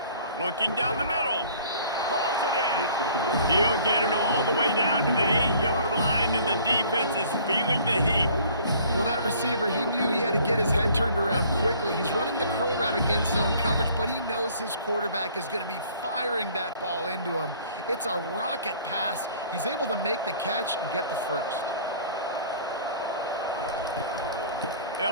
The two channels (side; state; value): both; inverted; correlation -0.53